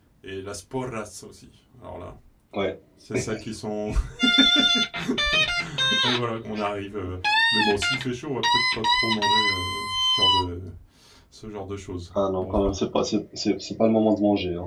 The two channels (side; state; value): both; identical; correlation 1.00